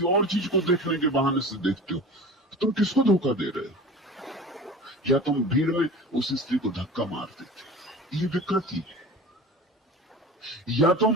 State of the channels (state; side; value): normal; both; correlation 0.37